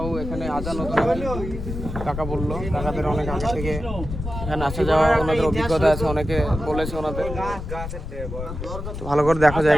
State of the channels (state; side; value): noise; left; rumble, 7 dB below the sound